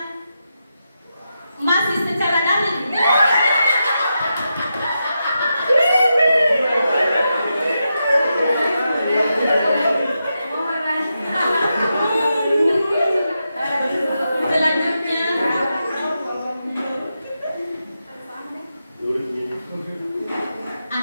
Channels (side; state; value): both; inverted; correlation -0.87